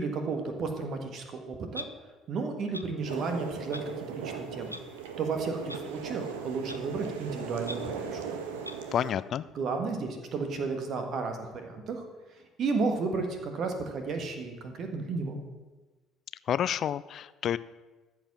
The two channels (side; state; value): both; normal; correlation 0.56